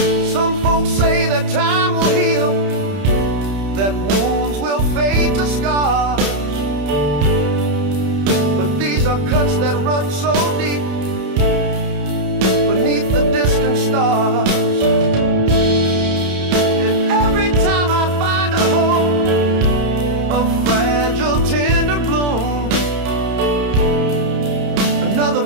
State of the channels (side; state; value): left; late; 31 ms